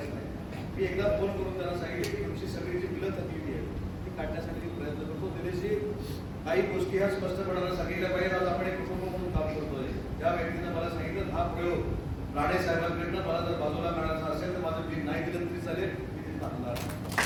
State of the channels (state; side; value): identical; both; correlation 1.00